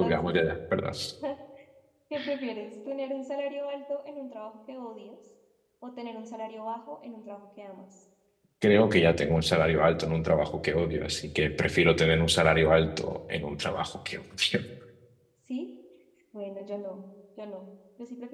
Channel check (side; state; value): both; identical; correlation 1.00